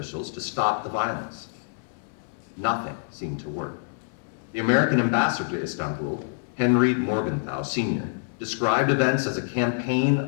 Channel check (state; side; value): silent; right; 61 dB below the other